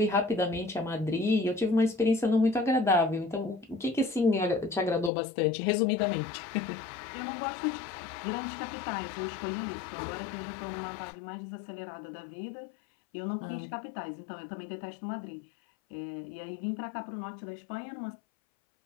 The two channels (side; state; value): right; drops out; at 5.1 s